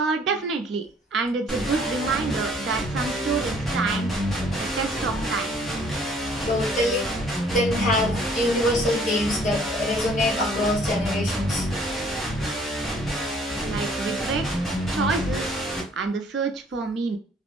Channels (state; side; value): normal; both; correlation 0.59